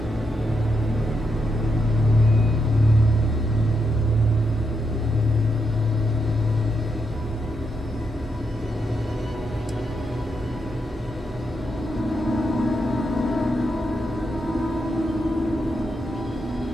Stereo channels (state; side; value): normal; both; correlation 0.82